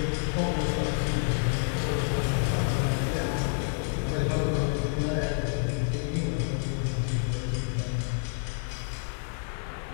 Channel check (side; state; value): right; silent; digital silence